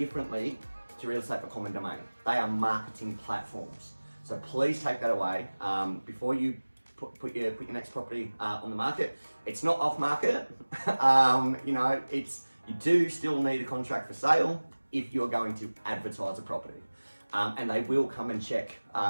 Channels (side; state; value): both; inverted; correlation -1.00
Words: to real estate for common domain. They are marketing platforms. So please take that away before you put your next property on the market. It's not off market. You do still need a contract for sale if you're going to advertise a property. And they will come and check,